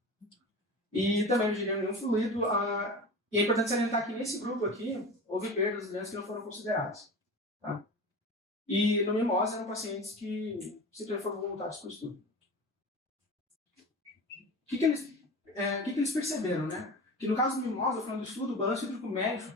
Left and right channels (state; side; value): normal; both; correlation 0.32